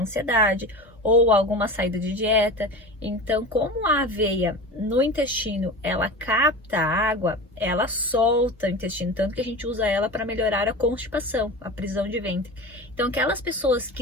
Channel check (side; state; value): both; normal; correlation 0.30